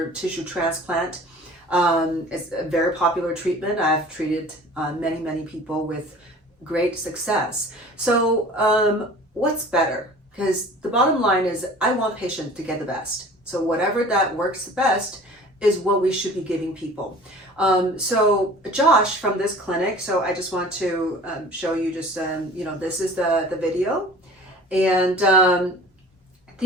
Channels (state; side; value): normal; both; correlation 0.44